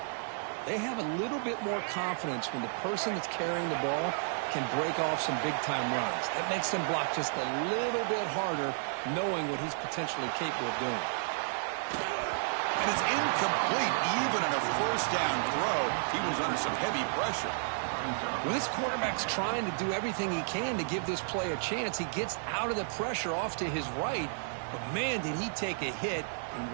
they have a little bit more confidence when the person that's carrying the ball can break off some big-time runs. That makes them block just a little bit harder, knowing what he's potentially capable of doing. And it's incomplete. Even on a 1st down throw, he was under some heavy pressure. When this quarterback's trying to do everything he can to give this play a chance, he gets out of the pressure off to his right, but man, did he take a hit and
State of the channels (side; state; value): left; silent; digital silence